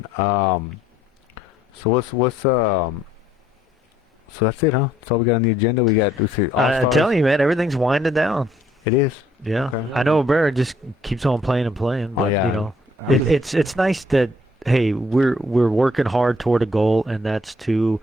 So So that's it, huh? That's all we got on the agenda. I'm telling you, man, everything's winding down. It is. Yeah. Okay. I know Barrett just keeps on playing and playing, but it's nice that we're working hard toward a goal, and that's to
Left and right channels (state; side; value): normal; both; correlation 0.65